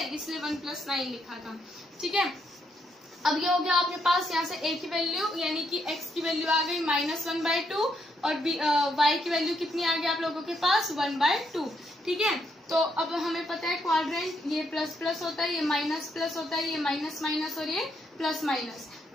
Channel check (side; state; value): both; normal; correlation 0.76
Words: इसलिए 1 + 9 लिखा था। ठीक है, अब ये हो गया आपके पास यहाँ से a की वैल्यू, यानी कि x की वैल्यू आ गई -1/2 और y की वैल्यू कितनी आ गई आप लोगों के पास, 1/2। ठीक है, तो अब हमें पता है क्वाड्रेंट ये प्लस प्लस होता है, ये माइनस प्लस होता है, ये माइनस माइनस और ये प्लस माइनस।